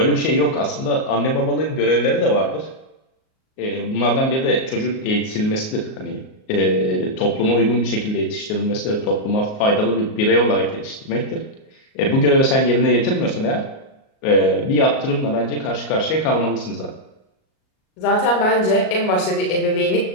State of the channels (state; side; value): late; right; 38 ms